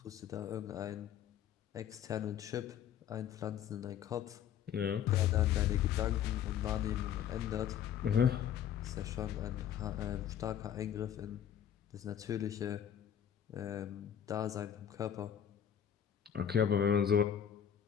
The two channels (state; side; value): quieter; right; 9.4 dB